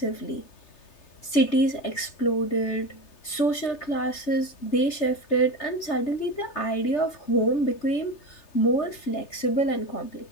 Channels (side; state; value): right; late; 3.3 ms